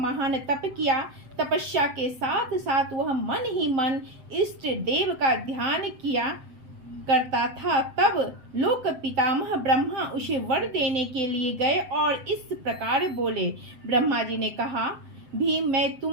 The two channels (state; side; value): late; left; 7.8 ms